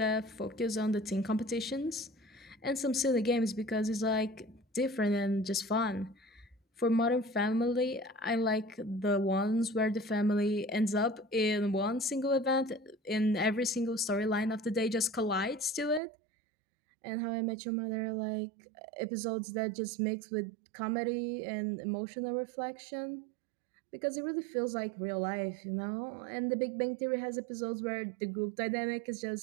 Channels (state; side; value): drops out; left; at 16.0 s